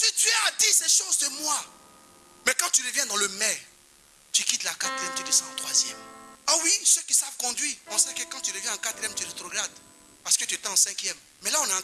Dieu a dit ces choses de moi, mais quand tu reviens dans le mais, tu quittes la quatrième, tu descends en troisième. Ah oui, ceux qui savent conduire, on sait que quand tu reviens en quatrième, tu rétrogrades. Parce que tu étais en cinquième. Mais là, on est en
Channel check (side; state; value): both; identical; correlation 1.00